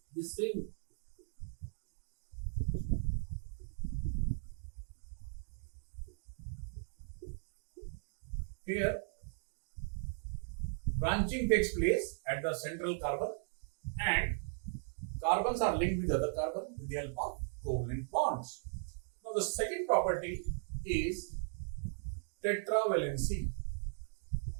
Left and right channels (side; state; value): left; silent; digital silence